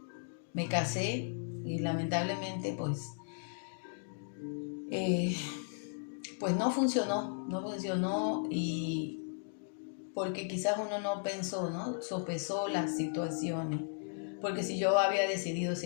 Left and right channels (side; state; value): right; silent; digital silence